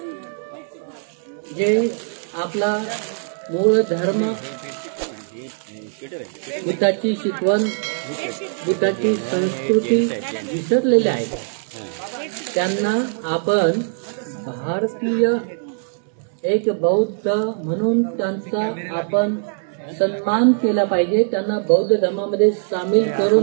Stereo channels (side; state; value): left; silent; digital silence